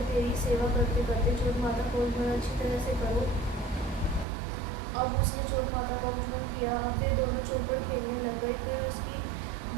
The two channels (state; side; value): drops out; left; at 4.2 s